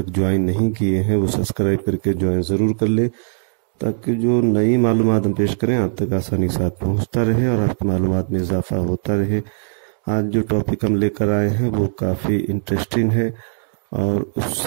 ज्वाइन नहीं किए हैं वो सब्सक्राइब करके ज्वाइन ज़रूर कर ले, ताकि जो नई मालूमात हम पेश करें आप तक आसानी के साथ पहुँचता रहे और आपकी मालूमात में इजाफा होता रहे। आज जो टॉपिक हम लेकर आए हैं वो काफ़ी इंटरेस्टिंग है और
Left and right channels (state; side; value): silent; left; digital silence